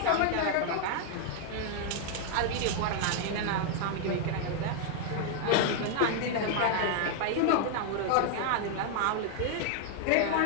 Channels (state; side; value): different; both; correlation 0.00